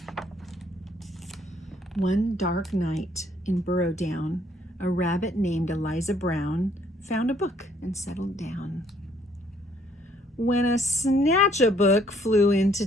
One dark night in Burrowdown, a rabbit named Eliza Brown found a book and settled down. When a Snatchabook flew into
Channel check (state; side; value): normal; both; correlation 0.65